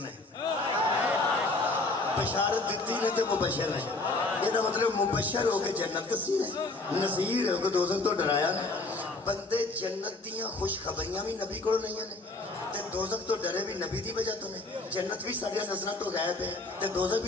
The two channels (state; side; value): quieter; right; 3.2 dB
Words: بشارت دیتی نے تے مبشر نے یہ مطلب مبشر ہو کے جنت دسی ہے نذیر ہو کے دوزخ تو ڈرایا نے بندے جنت دیاں خوشخبریاں بھی نبی کو نہیں ہیں تے دوزخ تو ڈرے بھی نبی دی وجہ تو نے جنت بھی ساڈیاں نظراں تو غائب ہے تے دوزخ